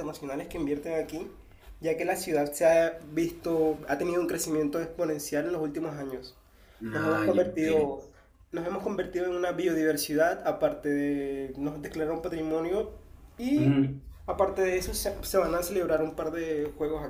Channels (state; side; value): identical; both; correlation 1.00